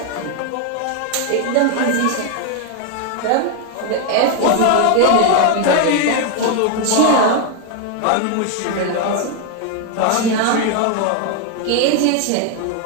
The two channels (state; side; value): different; both; correlation 0.01